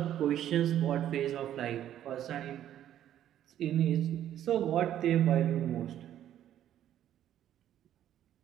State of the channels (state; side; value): quieter; left; 11.3 dB